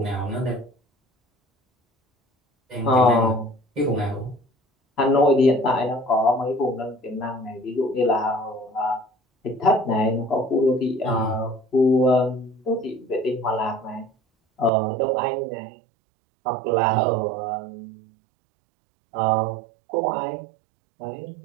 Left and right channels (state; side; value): drops out; left; at 14.7 s